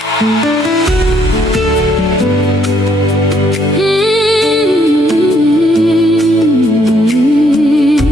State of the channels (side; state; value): both; normal; correlation 0.68